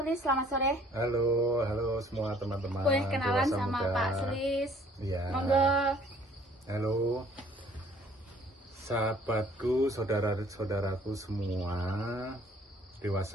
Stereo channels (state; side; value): normal; both; correlation 0.58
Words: selamat sore. Halo semua teman-teman. Boleh kenalan Dewasa sama Muda. Pak Sulis? Iya. Monggo. Halo, sahabatku, saudara-saudaraku semua,